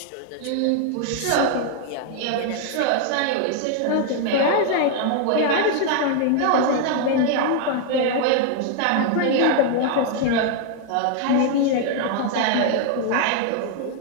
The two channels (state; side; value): different; both; correlation 0.00